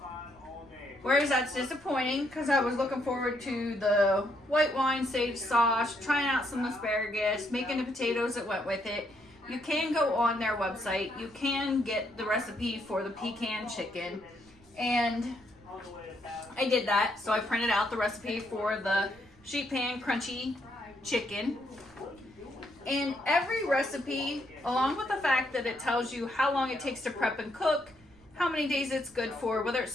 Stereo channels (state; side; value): noise; right; rumble, 28 dB below the sound